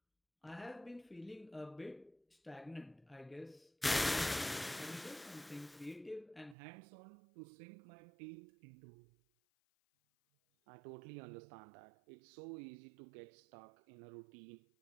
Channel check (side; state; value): left; drops out; at 6.6 s